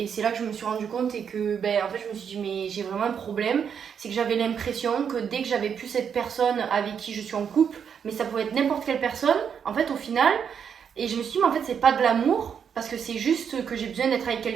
c'est là que je me suis rendu compte et que en fait je me suis dit mais j'ai vraiment un problème, c'est que j'avais l'impression que dès que j'avais plus cette personne avec qui je suis en couple, mais ça pouvait être n'importe quelle personne en fait au final, et je me suis dit mais en fait c'est pas de l'amour parce que c'est juste que j'ai besoin d'être avec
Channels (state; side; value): quieter; left; 7.4 dB